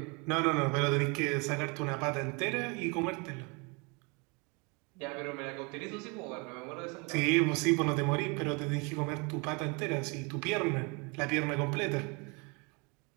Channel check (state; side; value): quieter; left; 30.5 dB